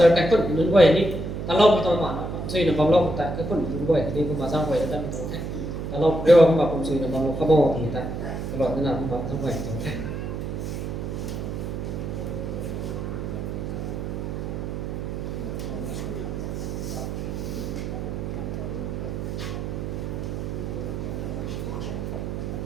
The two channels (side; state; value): right; noise; hum, 4 dB below the sound